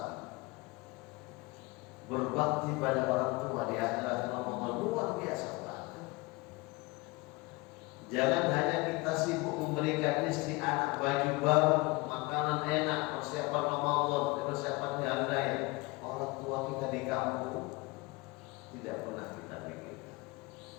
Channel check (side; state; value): right; quieter; 24.3 dB